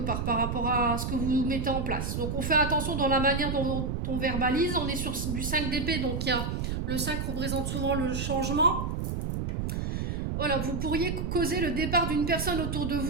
par rapport à ce que vous mettez en place. Donc on fait attention dans la manière dont on verbalise. On est sur du 5 d'épée, donc le 5 représente souvent le changement. Voilà, vous pourriez causer le départ d'une personne autour de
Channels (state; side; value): noise; right; rumble, 2 dB below the sound